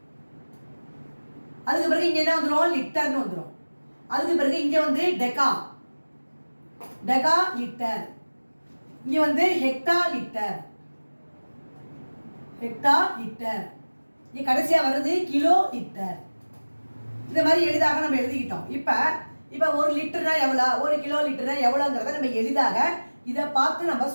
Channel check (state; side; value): inverted; both; correlation -1.00